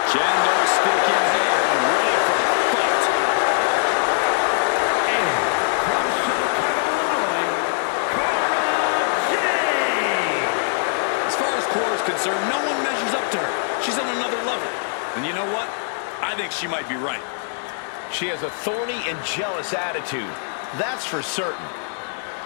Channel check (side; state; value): right; silent; 64 dB below the other